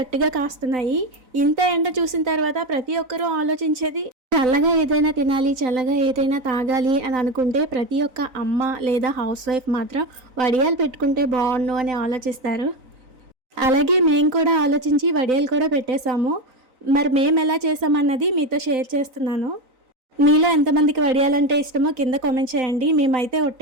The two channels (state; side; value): late; left; 3.9 ms